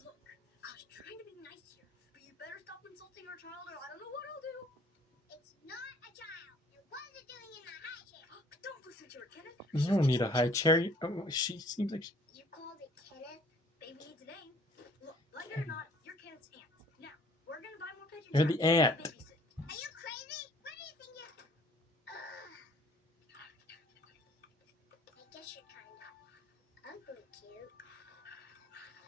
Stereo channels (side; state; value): both; normal; correlation 0.56